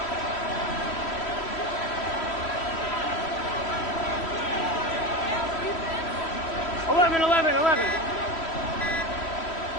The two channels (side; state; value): right; late; 3.1 ms